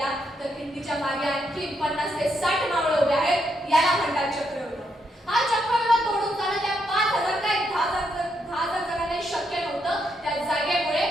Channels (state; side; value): normal; both; correlation 0.78